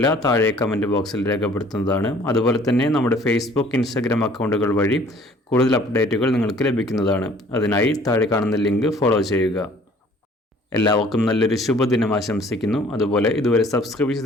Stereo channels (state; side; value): normal; both; correlation 0.54